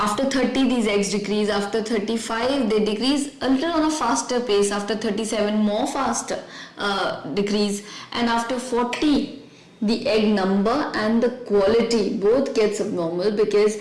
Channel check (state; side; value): identical; both; correlation 1.00